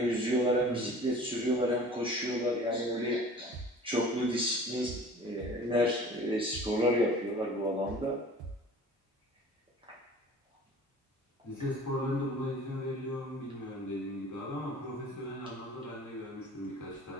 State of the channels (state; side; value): normal; both; correlation 0.44